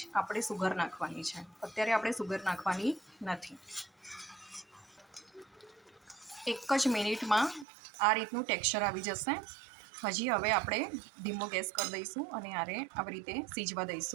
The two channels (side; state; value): left; drops out; at 7.7 s